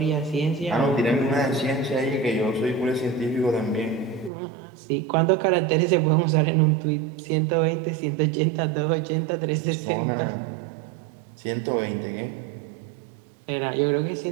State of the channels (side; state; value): left; drops out; at 4.3 s